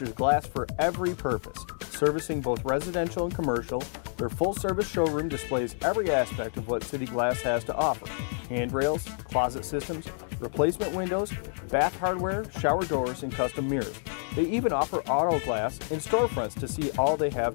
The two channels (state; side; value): silent; right; 59 dB below the other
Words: glass for every purpose, servicing both residential and commercial. Their full-service showroom displays every aspect of what City Glass has to offer: handrails, closet systems, replacement windows, bath hardware, shower doors, and custom mirrors. They even offer auto glass and storefronts to see all they have